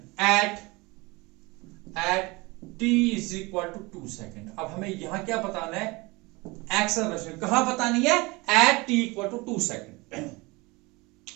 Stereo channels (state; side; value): quieter; left; 24.5 dB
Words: at t is equal to 2 second. अब हमें यहां क्या बताना है, एक्सेलरेशन कहां बतानी है, at t equal to 2 second,